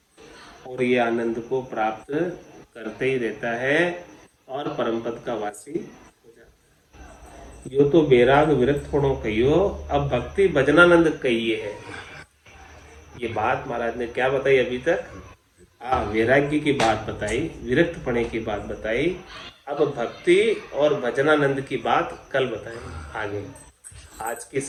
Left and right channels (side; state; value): both; identical; correlation 1.00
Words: और ये आनंद को प्राप्त करते ही रहता है और परम पद का वासी हो जाता है। यो तो बैराग विरक्त होनो कहियो, अब भक्ति भजनानंद कहिए है। ये बात महाराज ने क्या बताई अभी तक? वैराग्य की बात बताई, विरक्त पने की बात बताई, अब भक्ति और भजनानंद की बात कल बताएंगे आगे। आज की